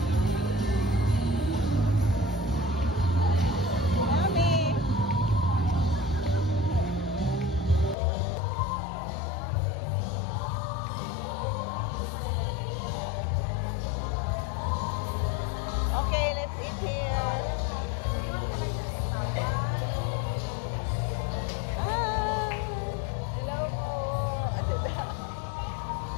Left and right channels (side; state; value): right; drops out; at 8.0 s